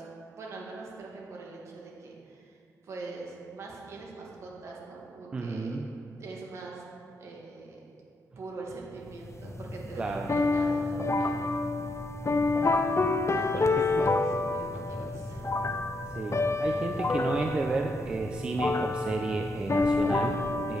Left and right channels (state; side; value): normal; both; correlation 0.78